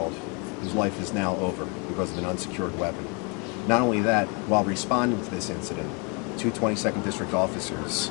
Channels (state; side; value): quieter; right; 33.4 dB